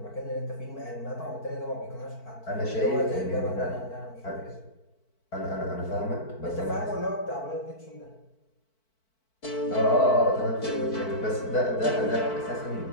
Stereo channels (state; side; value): late; right; 4.5 ms